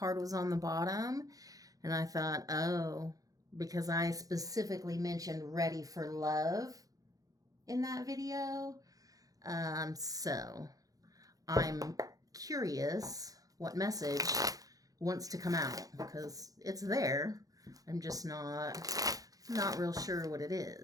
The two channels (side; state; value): left; late; 0.17 ms